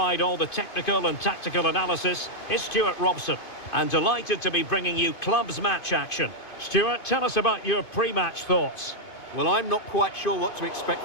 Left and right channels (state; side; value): late; right; 2.5 ms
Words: all the technical and tactical analysis, is Stuart Robson. And delighted to be bringing you clubs match action. Stuart, tell us about your pre-match thoughts. Well, I'm not quite sure what to expect